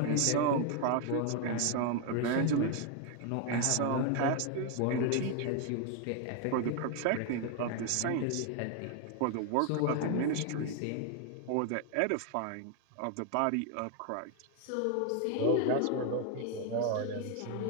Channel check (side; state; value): both; different; correlation 0.00